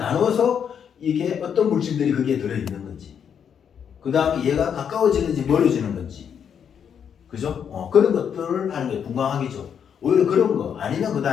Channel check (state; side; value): quieter; right; 7.9 dB